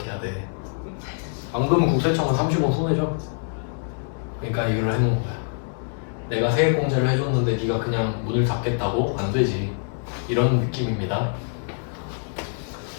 돼. 안 그러면 국세청은 30원 손해죠. 그러니까 이걸 해놓은 거야. 내가 세액공제를 해줬는데 네가 그냥 문을 닫겠다고? 안 되지. 이런 느낌입니다.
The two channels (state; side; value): silent; right; 62 dB below the other